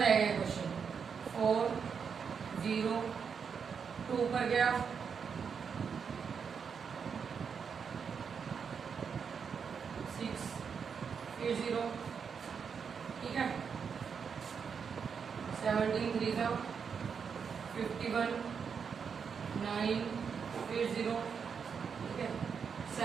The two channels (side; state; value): left; quieter; 6.4 dB